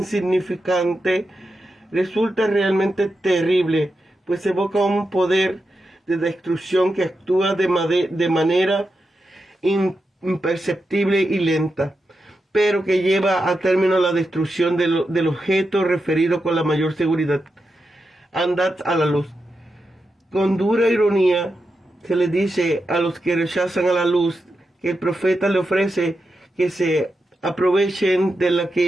resulta realmente terrible, pues evoca un poder de destrucción que actúa de manera imperceptible y lenta, pero que lleva a término la destrucción del objeto referido con la mayor seguridad. Andad a la luz. Con dura ironía se le dice a los que rechazan a la luz que el profeta le ofrece que se aprovechen de la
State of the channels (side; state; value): both; normal; correlation 0.88